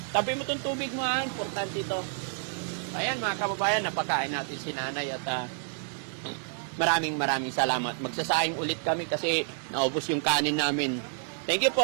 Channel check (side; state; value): left; silent; digital silence